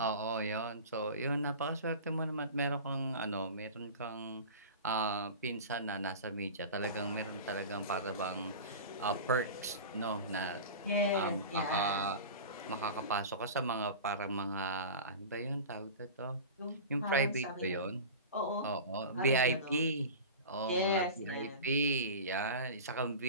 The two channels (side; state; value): both; inverted; correlation -0.33